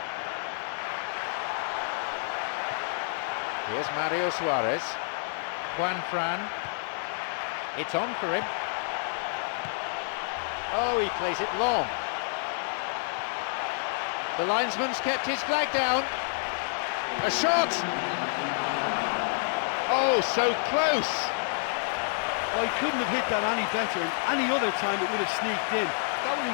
Here's Mario Suarez. Juan Fran. It's on for him. Oh, he plays it long. The linesman's kept his flag down. A shot! Oh, so close! Oh, he couldn't have hit that any better, and any other time it would have sneaked in. That would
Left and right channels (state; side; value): silent; right; digital silence